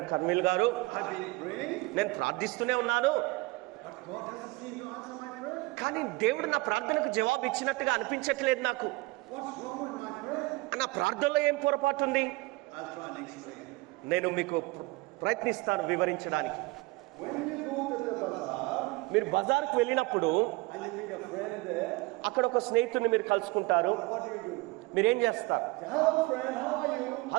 కర్మిల్ గారు, I've been praying, నేను ప్రార్థిస్తూనే ఉన్నాను, but God doesn't seem to answer my prayer. కానీ దేవుడు నా ప్రార్థనకు జవాబు ఇచ్చినట్టుగా అనిపించట్లేదు నాకు. What's wrong with my prayer? నా ప్రార్థనలో ఏం పొరపాటు ఉంది? I'll try and explain. నేను మీకు ప్రయత్నిస్తాను వివరించడానికి. When you go to the bazaar మీరు బజార్కు వెళ్ళినప్పుడు and you meet a friend there, అక్కడ ఒక స్నేహితుడిని మీరు కలుసుకుంటారు. what do? మీరేం చేస్తారు? Say, hello friend, how are you?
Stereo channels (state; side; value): quieter; left; 23.2 dB